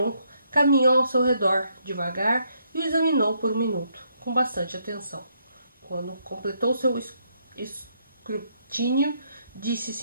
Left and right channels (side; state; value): both; inverted; correlation -0.74